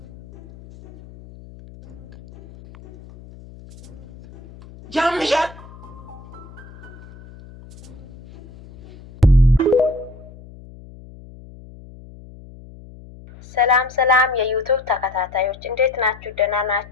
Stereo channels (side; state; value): left; noise; hum, 19 dB below the sound